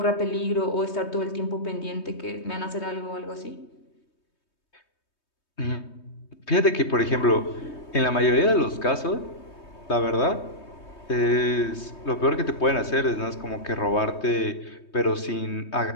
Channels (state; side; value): late; right; 3.2 ms